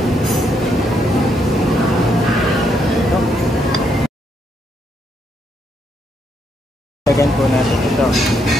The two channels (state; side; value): normal; both; correlation 0.76